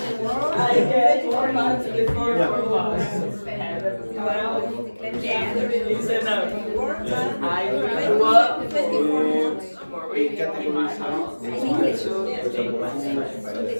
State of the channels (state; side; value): inverted; both; correlation -1.00